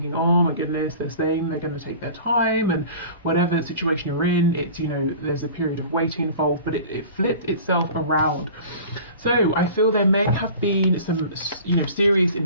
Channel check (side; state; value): both; inverted; correlation -0.41